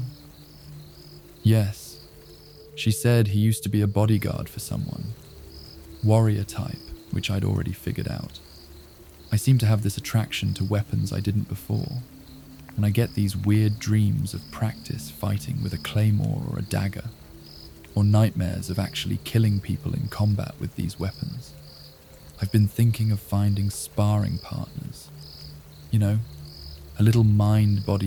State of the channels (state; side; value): identical; both; correlation 1.00